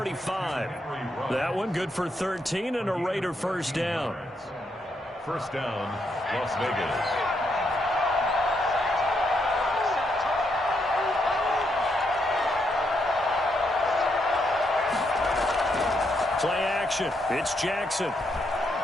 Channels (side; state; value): both; normal; correlation 0.78